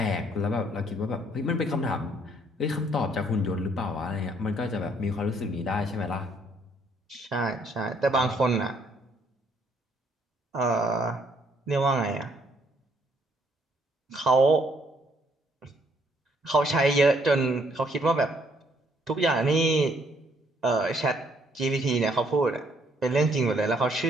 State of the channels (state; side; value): normal; both; correlation 0.67